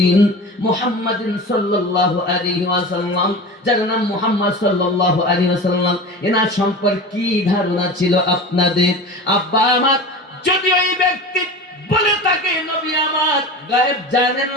মুহাম্মাদিন সাল্লাল্লাহু আলাইহি ওয়াসাল্লাম, যার নাম মুহাম্মদ সাল্লাল্লাহু আলাইহি ওয়াসাল্লাম, এনার সম্পর্কে কি ধারণা ছিল আপনাদের? আব্বা আমার যদি ওই ব্যক্তি বলে থাকে নবী আমার গায়েব জানেন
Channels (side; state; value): both; normal; correlation 0.32